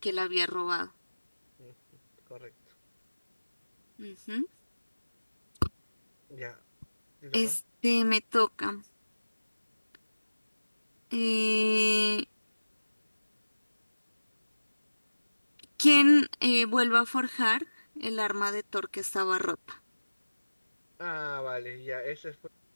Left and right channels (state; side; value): inverted; both; correlation -1.00